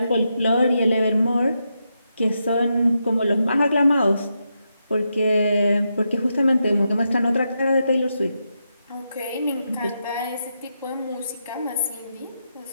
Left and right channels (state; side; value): inverted; both; correlation -0.85